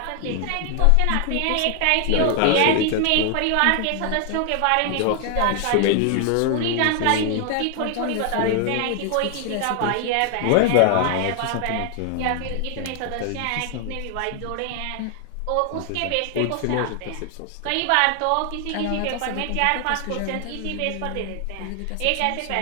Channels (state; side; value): different; both; correlation 0.00